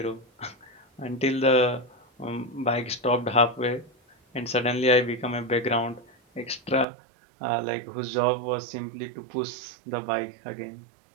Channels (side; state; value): left; drops out; at 6.9 s